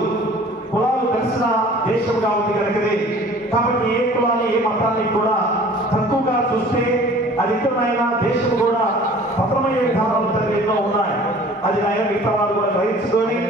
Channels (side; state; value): both; normal; correlation 0.48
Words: కులాలు కలిసిన దేశంగా ఉంది కనుకనే. కాబట్టి ఏ కులాన్ని ఏ మతాన్ని కూడా తక్కువగా చూస్తే అది ఇతరులైనా దేశం కూడా పతనమయ్యే విధానాలు ఎన్నో ఉన్నాయి. అది ఆయన మిగతా వారు కూడా గ్రహించుకొని